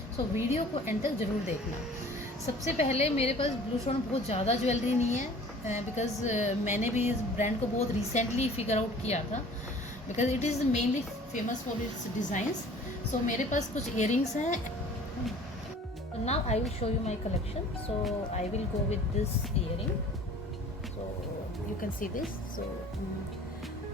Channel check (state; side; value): normal; both; correlation 0.48